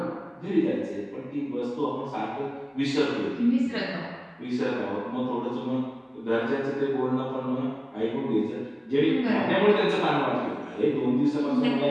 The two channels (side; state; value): both; identical; correlation 1.00